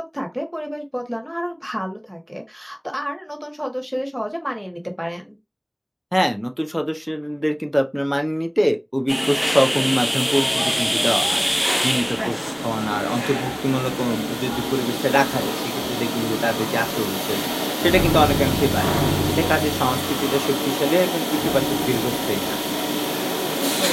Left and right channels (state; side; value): identical; both; correlation 1.00